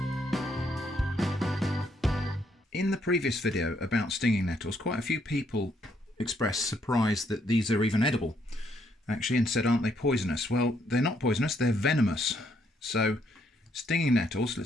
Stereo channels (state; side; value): normal; both; correlation 0.72